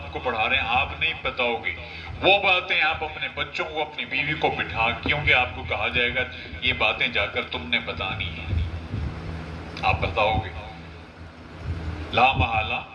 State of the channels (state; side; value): identical; both; correlation 1.00